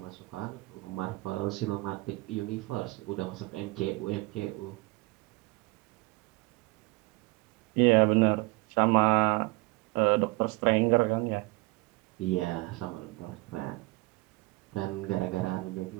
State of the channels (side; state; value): left; quieter; 24.3 dB